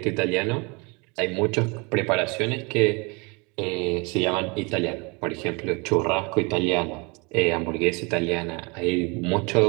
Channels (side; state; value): left; quieter; 29.2 dB